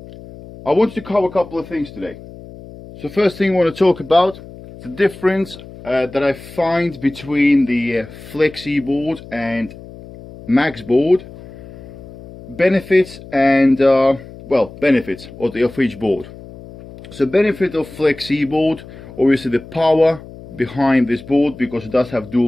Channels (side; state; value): left; noise; hum, 17 dB below the sound